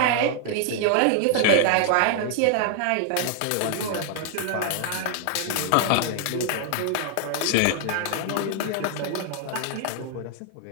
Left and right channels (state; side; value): different; both; correlation 0.00